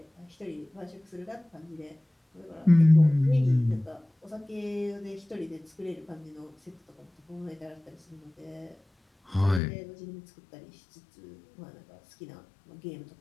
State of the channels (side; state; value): right; drops out; at 9.6 s